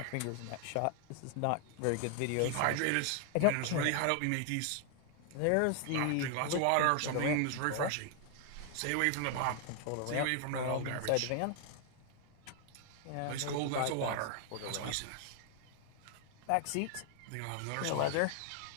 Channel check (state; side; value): different; both; correlation 0.00